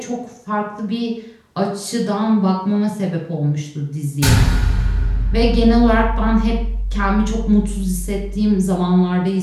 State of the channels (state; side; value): identical; both; correlation 1.00